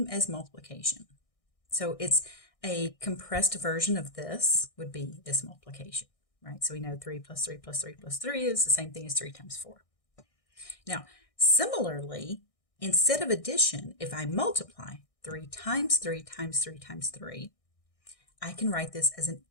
as multiplication. So it's a compressed version of this would be this multiplication, right? So we know 3 plus 3 plus 3 plus 3 is the same thing as 3 times 4. Now, similarly, instead of addition, if I multiply 3 times 3 times 3 times 3, I can write this as an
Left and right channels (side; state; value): right; late; 1.6 ms